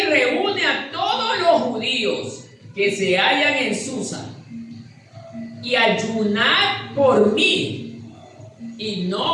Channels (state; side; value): identical; both; correlation 1.00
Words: reúne a judíos que se hallan en Susa, y ayunad por mí, y